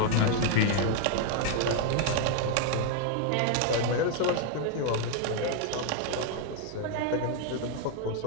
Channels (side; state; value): both; different; correlation 0.00